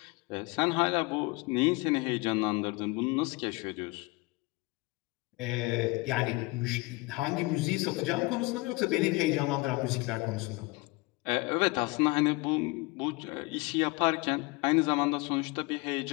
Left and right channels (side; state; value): right; quieter; 24.7 dB